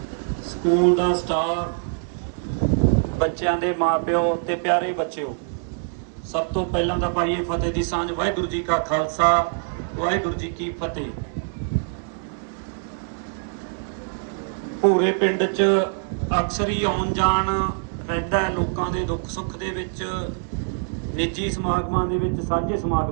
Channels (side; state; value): left; silent; digital silence